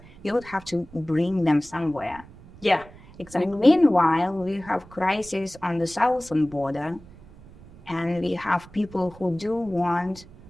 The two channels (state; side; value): noise; right; rumble, 21 dB below the sound